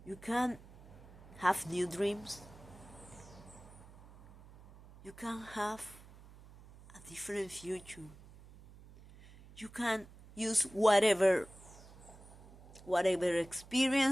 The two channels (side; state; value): right; noise; hum, 20 dB below the sound